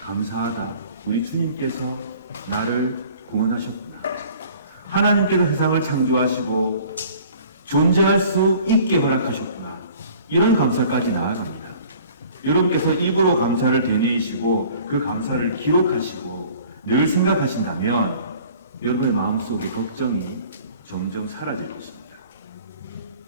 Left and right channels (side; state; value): both; inverted; correlation -0.50